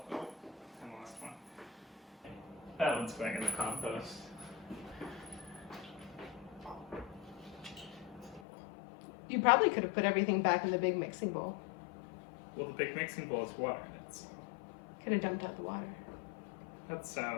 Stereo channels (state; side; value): drops out; right; at 8.4 s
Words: Oh, I lost one. That one's going in the compost. You probably could have put everything back in the big mixing bowl. Well, the big mixing bowl has water in it, so Could have dumped out the water. that